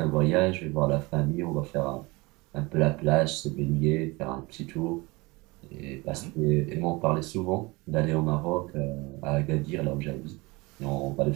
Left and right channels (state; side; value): quieter; left; 24.2 dB